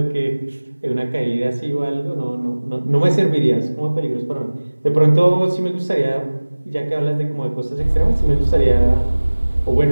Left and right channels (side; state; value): both; inverted; correlation -1.00